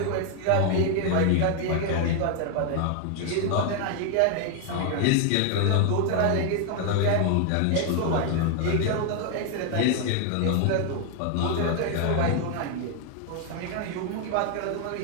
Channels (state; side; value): different; both; correlation 0.00